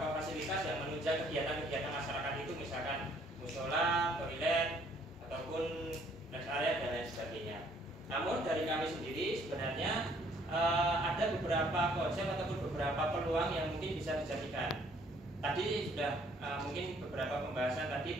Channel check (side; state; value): both; normal; correlation 0.63